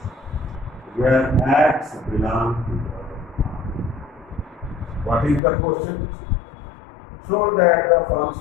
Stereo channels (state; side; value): drops out; right; at 5.4 s